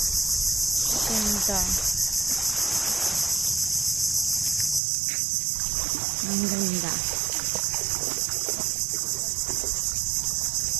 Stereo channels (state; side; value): drops out; left; at 4.8 s